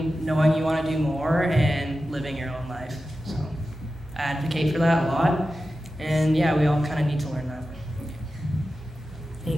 knowing you want to do more and living your own life. So I advocate for that a lot. And yeah, we all kind of need to learn that.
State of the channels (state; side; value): normal; both; correlation 0.93